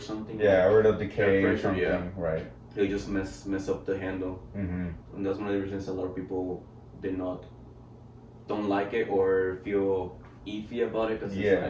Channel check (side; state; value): both; identical; correlation 1.00